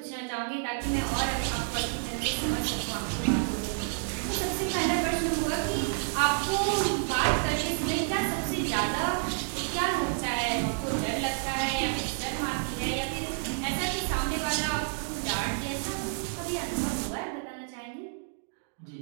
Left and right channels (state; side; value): silent; left; digital silence